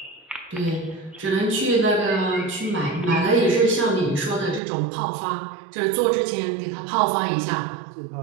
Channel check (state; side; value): drops out; left; at 4.6 s